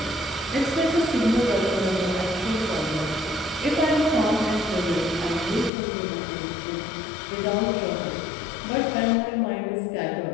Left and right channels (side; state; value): right; drops out; at 5.7 s